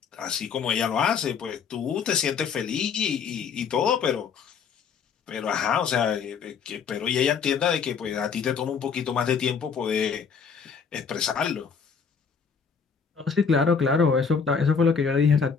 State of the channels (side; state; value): right; quieter; 6.2 dB